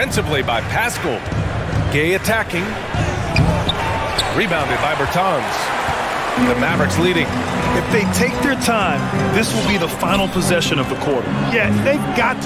by Pascal. Gay attacking. Rebounded by Bertans. The Mavericks leading. If they take their time, this will be the final possession of the quarter. Yeah, they've got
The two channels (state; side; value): identical; both; correlation 1.00